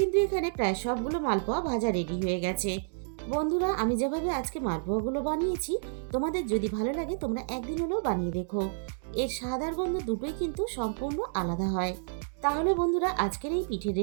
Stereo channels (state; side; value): silent; left; digital silence